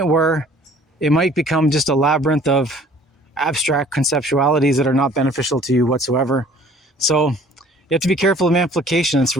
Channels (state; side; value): normal; both; correlation 0.53